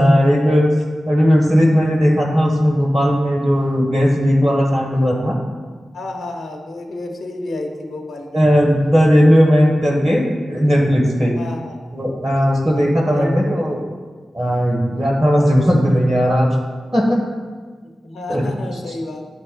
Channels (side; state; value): both; normal; correlation 0.96